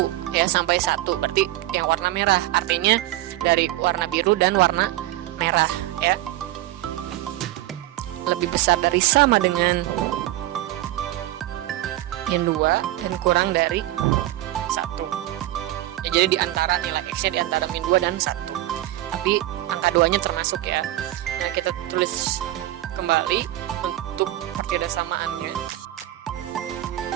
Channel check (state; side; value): quieter; left; 15.5 dB